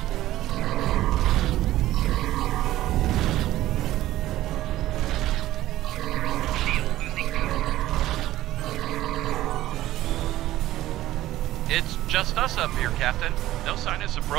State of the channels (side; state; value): left; quieter; 15.0 dB